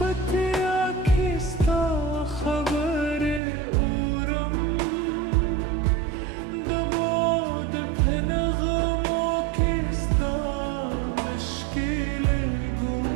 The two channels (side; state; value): left; drops out; at 3.4 s